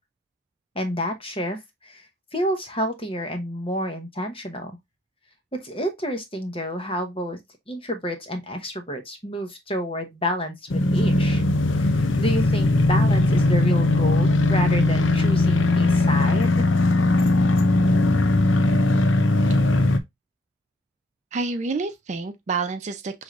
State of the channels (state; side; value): normal; both; correlation 0.73